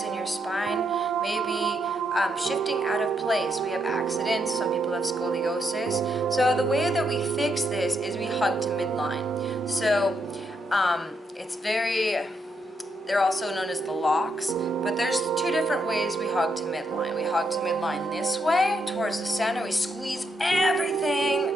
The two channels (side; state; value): both; normal; correlation 0.79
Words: in your spine may be shifting out of place. We have accidents, some people have scoliosis. So the way that we fix this is we hug to midline. So it's they're also known as the locks, but there's two different ways we hug to midline. We hug to midline this way, towards the center. We squeeze